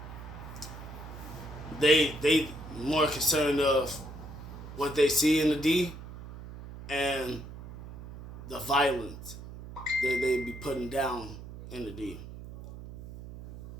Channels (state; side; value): noise; right; hum, 13 dB below the sound